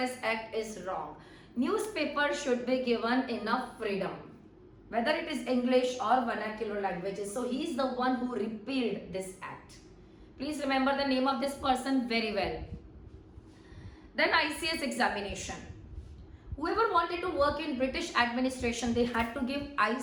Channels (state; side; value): identical; both; correlation 1.00